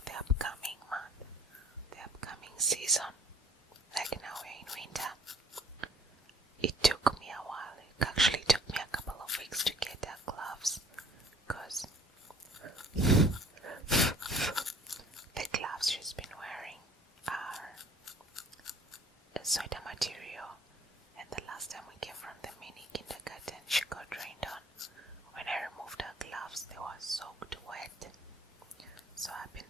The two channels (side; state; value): both; normal; correlation 0.54